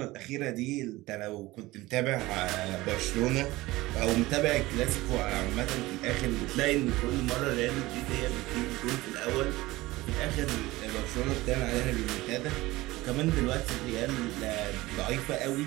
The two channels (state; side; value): quieter; left; 19.2 dB